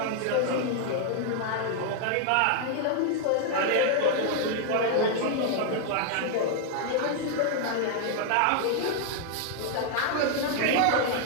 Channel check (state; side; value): different; both; correlation 0.00